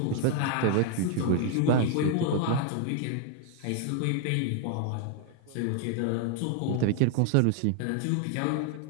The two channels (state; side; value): different; both; correlation 0.00